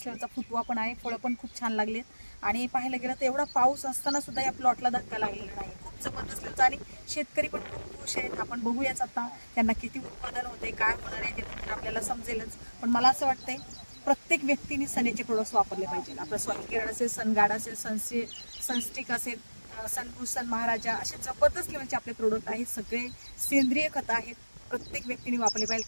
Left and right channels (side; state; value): both; inverted; correlation -1.00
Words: लेवलचा फुटवा पण आहे. फळं पण खूप छान लागलेत आणि पाहायला गेलं तर एवढा पाऊस असताना सुद्धा या प्लॉटला धक्का लागलेला नाही. खूप जबरदस्त लेवलचा आणि शेतकरी पण खूप खुश आहेत. आपण बघूयाच आता त्यांना किती उत्पादन होते, काय होणार आहे ते आपल्याला समजेलच. पण मला असं वाटतंय प्रत्येक व्यक्तीने सनेचे प्रोडक्ट्स वापरले पाहिजे. आपलं सॉइल केअर असेल, सनगार्ड असेल, सनस्टिक असेल, सनभूषण महाराजा असे जबरदस्त लेवलचे आपले प्रोडक्ट आहेत. सगळे सेंद्रिय खत आहेत. प्रत्येक व्यक्तीने वापरले पाहिजे.